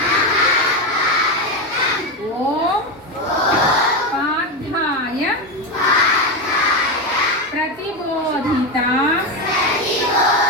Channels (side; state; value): both; normal; correlation 0.13